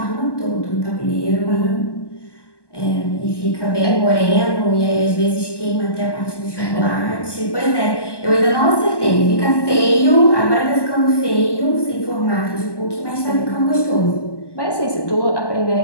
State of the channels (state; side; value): late; right; 1.1 ms